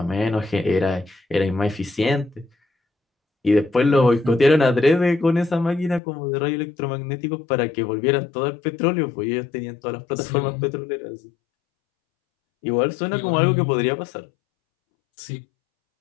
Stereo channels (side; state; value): right; drops out; at 6.0 s